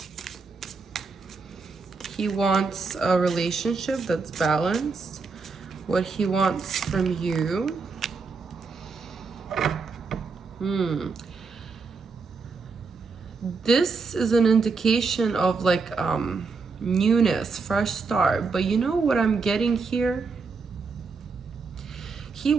He wants a relationship that's balanced. What he wants from you. This is an indication of like newness, fresh start. But you know what I'm getting here? He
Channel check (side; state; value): left; quieter; 4.6 dB